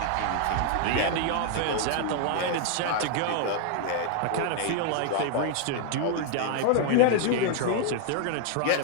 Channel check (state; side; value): different; both; correlation 0.00